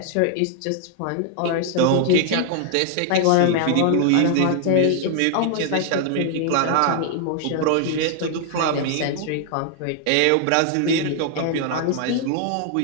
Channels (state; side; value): different; both; correlation 0.00